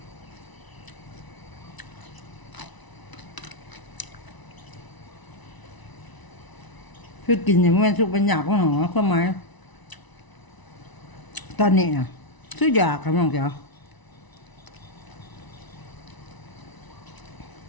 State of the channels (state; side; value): late; right; 1.0 ms